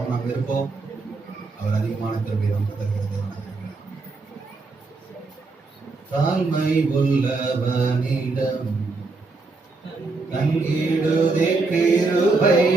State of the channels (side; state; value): left; quieter; 3.8 dB